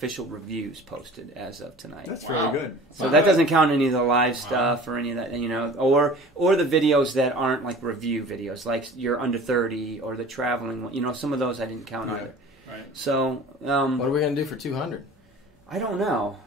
reviews posted as of tonight. That's really good. So that doesn't count any of the live stuff or any of that, or the videos that aren't like review videos, like you're under 30 or the traveling one. Some of those I didn't count either. Right. So what are we going to do for 200? I don't know.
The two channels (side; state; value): both; normal; correlation 0.43